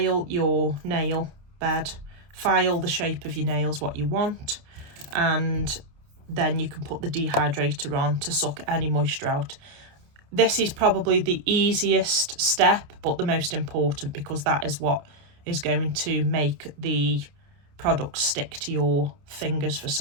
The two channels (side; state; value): left; late; 28 ms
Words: your nail bed. File the shape of your nails what you want, and then you can put the dehydrator on to suck any moisture out. This is probably the easiest step, but the most important, because that is what is going to make the product stick to your fingers for